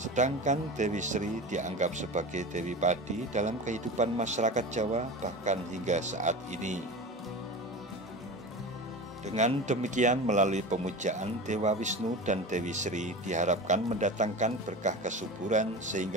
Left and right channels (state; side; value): normal; both; correlation 0.30